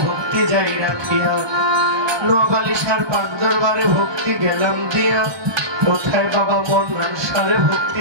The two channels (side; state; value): left; late; 1.2 ms